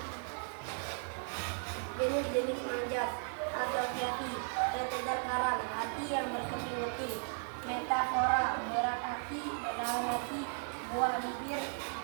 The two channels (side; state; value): left; silent; 54 dB below the other